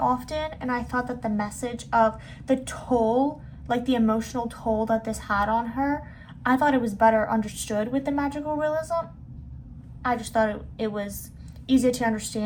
and I thought that the message of the toll, like the emotional toll that this had on her, I thought it was better understood with the magical realism. I just thought it was easier to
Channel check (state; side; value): identical; both; correlation 1.00